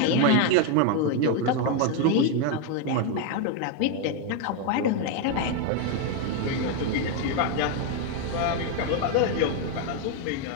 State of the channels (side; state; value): both; different; correlation 0.01